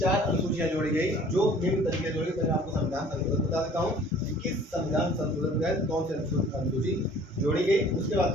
अनुसूचियां जोड़ी गई जो निम्न तरीके से जोड़ी गई। मैं आपको संविधान संशोधन बता देता हूँ कि किस संविधान संशोधन के तहत कौन सी अनुसूची जोड़ी गई। उसके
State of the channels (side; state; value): both; normal; correlation 0.51